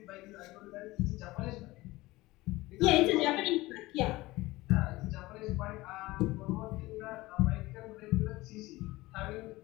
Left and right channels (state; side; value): quieter; right; 19.6 dB